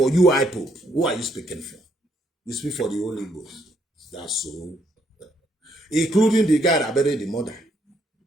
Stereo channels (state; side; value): normal; both; correlation 0.72